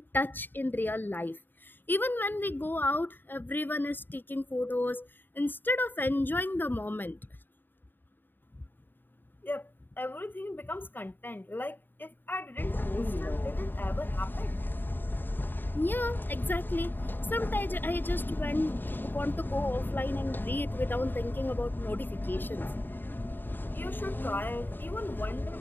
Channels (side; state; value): right; late; 0.093 ms